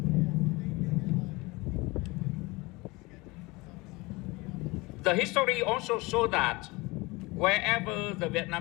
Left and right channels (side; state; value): right; quieter; 23.8 dB